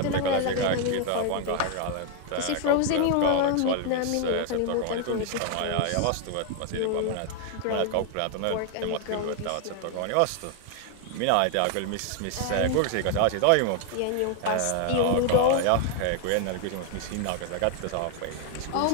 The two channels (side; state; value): both; different; correlation 0.00